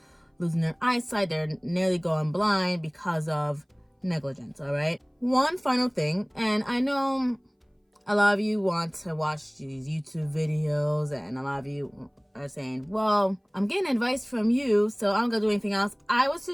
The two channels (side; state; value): both; identical; correlation 1.00